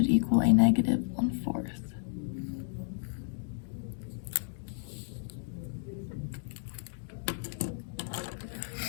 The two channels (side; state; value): right; silent; digital silence